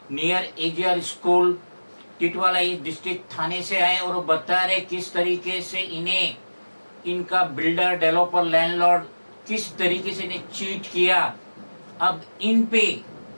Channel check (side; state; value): both; inverted; correlation -1.00